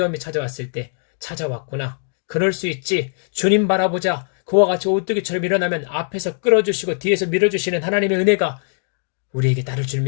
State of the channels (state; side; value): silent; right; 65 dB below the other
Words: 찾아왔을 때 찾아왔구나, 그럴 수 있지, 주님 바라보자, 그와 같이 오뚜기처럼 일어나면 앞에서 끌어주시고 뒤에서 밀어주시는 하나님의 은혜가 우리에게 따를 줄